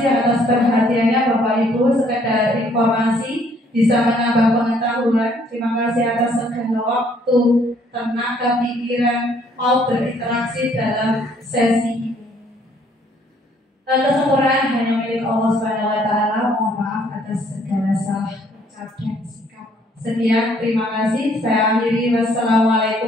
atas perhatiannya Bapak Ibu, sekedar informasi bisa menambah pengetahuan. Terima kasih atas segala waktu, tenaga, pikiran mau berinteraksi dalam sesi ini. Kesempurnaan hanya milik Allah SWT. Mohon maaf atas segala salah ucap dan sikap. Sekian, terima kasih. Saya akhiri.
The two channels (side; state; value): both; normal; correlation 0.64